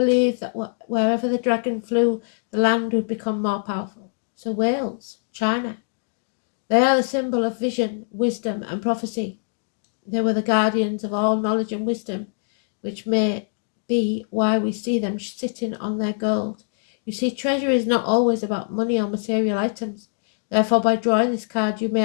that wherever the dragon flew, the land would become more powerful. So Wales, China, they are the symbol of vision, wisdom, and prophecy. They were the guardians of all knowledge and wisdom, which may be why we see them sitting on their gold. You see, treasure is not always about money or material items. Therefore, by drawing this card, you may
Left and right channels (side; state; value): right; silent; digital silence